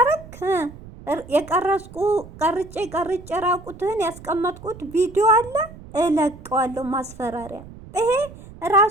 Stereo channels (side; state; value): right; noise; rumble, 17 dB below the sound